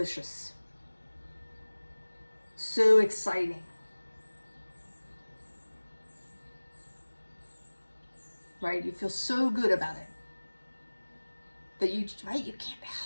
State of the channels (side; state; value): both; inverted; correlation -1.00